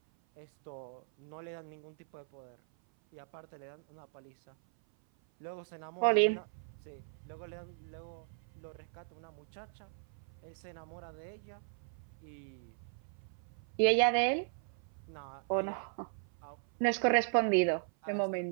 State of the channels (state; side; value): silent; left; 53 dB below the other